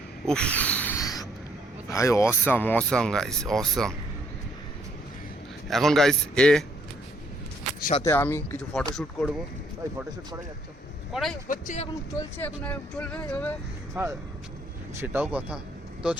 উফ ভাই, অসাম গাইস, অসাম। এখন গাইস সাথে আমি কিছু ফটোশ্যুট করবো, ভাই ফটোশ্যুট করা যাচ্ছে, করাই হচ্ছে, এখন চলছে, এখন চলবে এভাবে। হ্যাঁ সেটাও কথা। তো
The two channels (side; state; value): both; normal; correlation 0.67